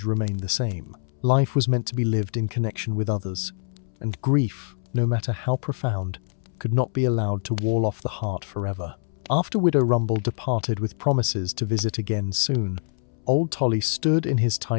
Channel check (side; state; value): right; silent; 62 dB below the other